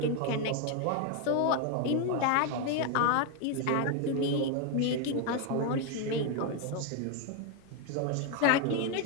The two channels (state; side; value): different; both; correlation 0.02